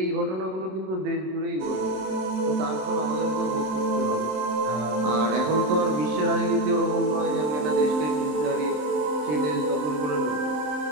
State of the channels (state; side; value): late; left; 27 ms